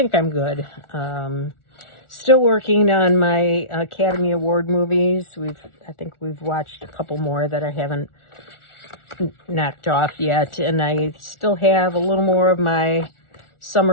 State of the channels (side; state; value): right; late; 1.4 ms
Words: I'm good. Still working on my Academy Award movies. I think we've watched a couple more that I haven't knocked off yet, and I still have a little more of my